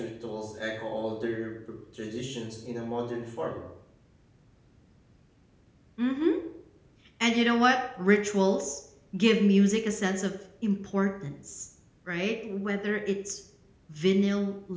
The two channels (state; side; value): identical; both; correlation 1.00